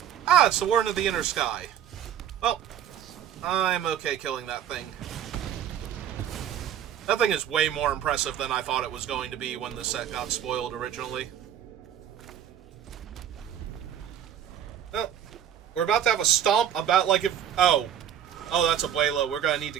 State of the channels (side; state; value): left; quieter; 10.0 dB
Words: Ah, it's the Warden of the Inner Sky. Well, I'm okay killing that thing. That thing is way more impressive than I thought it was going to be when the set got spoiled originally. Well, we're about to have a stomp about, like, if... oh, that's a Abuelo. We're gonna need to